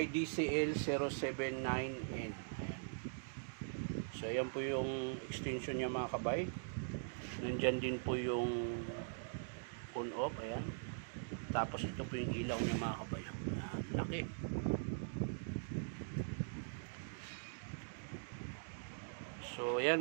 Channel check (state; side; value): silent; left; digital silence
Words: DCL079N. So ayan po yung extension niya mga kabay. Nandyan din po yung on off. Ayan. Tapos ito po yung ilaw niya mga kabay. Laki. So yan